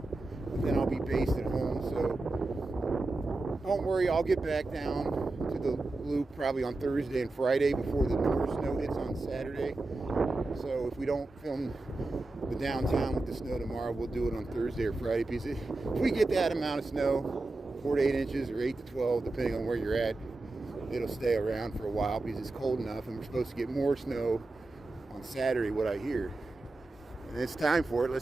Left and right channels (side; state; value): left; quieter; 3.1 dB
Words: but then I'll be based at home, so don't worry, I'll get back down to the loop probably on Thursday and Friday before the more snow hits on Saturday. So if we don't film the downtown with the snow tomorrow, we'll do it on Thursday or Friday, because if we get that amount of snow, 4 to 8 inches or 8 to 12, depending on where you're at, it'll stay around for a while because it's cold enough, and we're supposed to get more snow on Saturday, what I hear. And it's time for it.